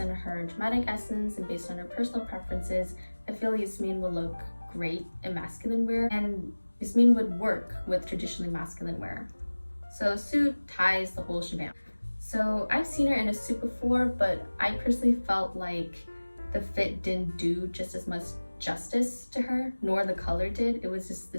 on her dramatic essence and based on her personal preferences, I feel Yasmin will look great in masculine wear, and Yasmin would work with traditionally masculine wear. So suit, ties, the whole shebang. So I've seen her in a suit before, but I personally felt like the fit didn't do just as much justice to her, nor the color did. It was just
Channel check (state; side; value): inverted; both; correlation -1.00